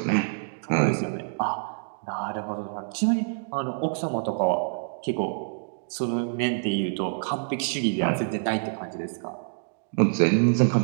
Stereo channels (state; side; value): silent; left; digital silence